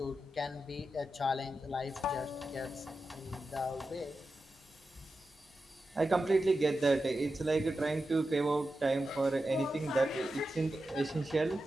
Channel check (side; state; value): both; normal; correlation 0.91